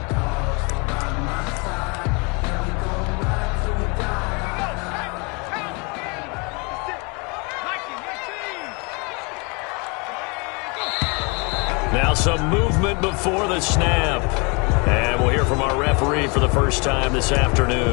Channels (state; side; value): quieter; right; 30.9 dB